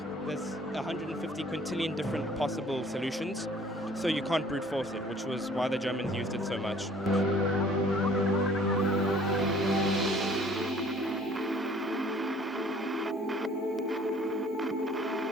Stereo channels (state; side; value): normal; both; correlation 0.55